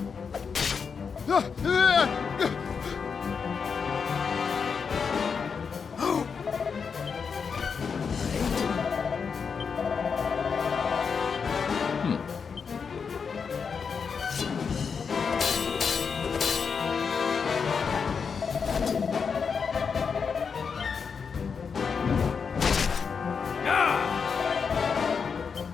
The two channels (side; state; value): right; quieter; 5.9 dB